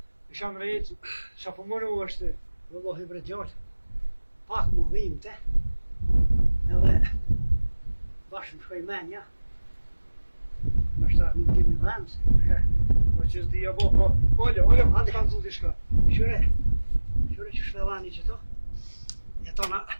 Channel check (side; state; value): both; inverted; correlation -1.00